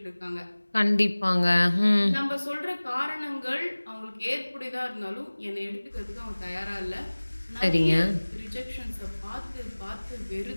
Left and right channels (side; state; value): both; inverted; correlation -1.00